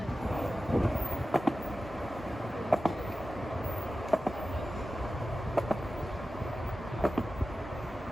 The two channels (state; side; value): normal; both; correlation 0.94